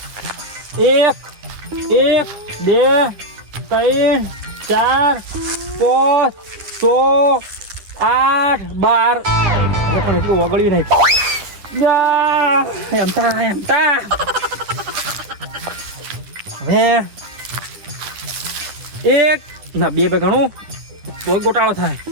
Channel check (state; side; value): late; left; 9.9 ms